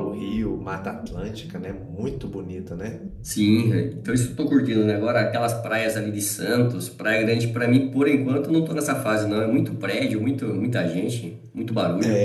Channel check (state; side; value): identical; both; correlation 1.00